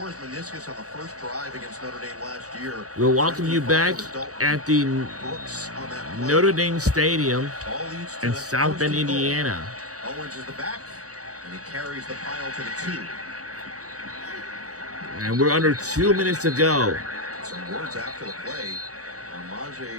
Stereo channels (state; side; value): late; left; 0.66 ms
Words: his meniscus on the first drive against Notre Dame last year. We'll welcome you back at the Notre Dame Stadium in South Bend, Indiana. Owens is the back, and he carries the pile to the 2. And we're under 2 minutes to go. Some words after the play.